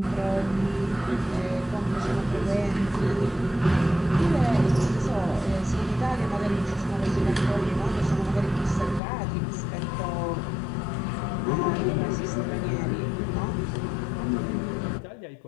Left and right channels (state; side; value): drops out; right; at 9.0 s